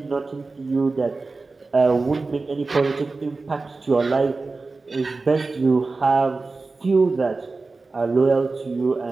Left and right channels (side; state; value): left; quieter; 3.7 dB